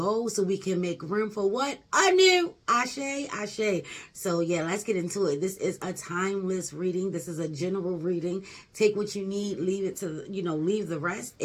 so we can make room for what? A new ashe, ashe. So yeah, let's get into it. This is a timeless reading. This is a general reading. Take what you need, leave it to, leave the rest.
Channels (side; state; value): both; identical; correlation 1.00